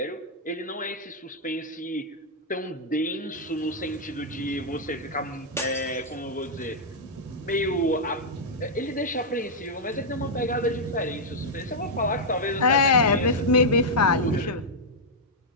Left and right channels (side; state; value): both; normal; correlation -0.06